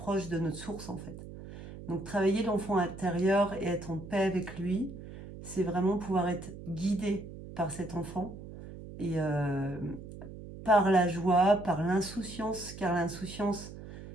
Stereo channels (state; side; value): noise; right; hum, 13 dB below the sound